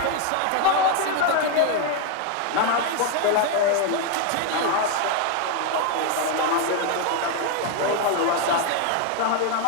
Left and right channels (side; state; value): both; different; correlation 0.01